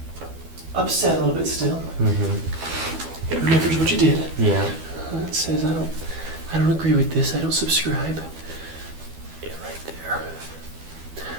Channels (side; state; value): left; late; 12 ms